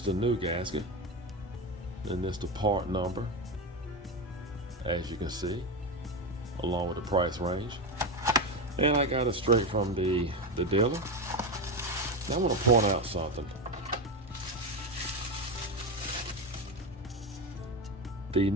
the new gasket, and this is the part number, as you can see, along with the price range. And I got it straight from the dealer. Now I want to point out something. The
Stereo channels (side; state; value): both; normal; correlation 0.16